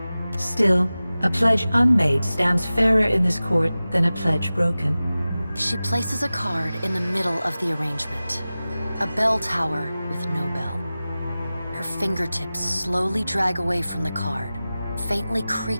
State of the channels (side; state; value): both; inverted; correlation -0.96